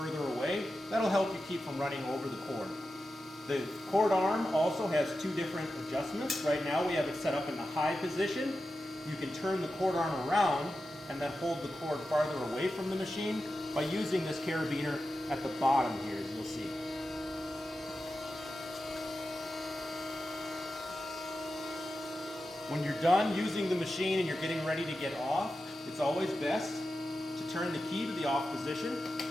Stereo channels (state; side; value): normal; both; correlation 0.91